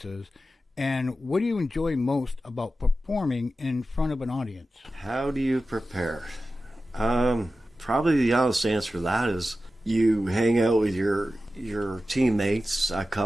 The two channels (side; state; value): both; normal; correlation 0.93